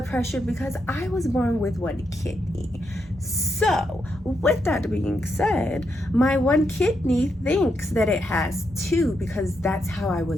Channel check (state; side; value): normal; both; correlation 0.81